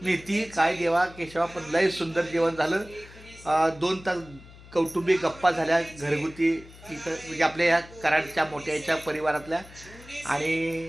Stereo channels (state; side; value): noise; left; hum, 20 dB below the sound